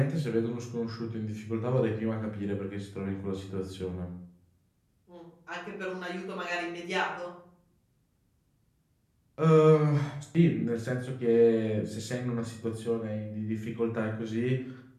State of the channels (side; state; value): both; identical; correlation 1.00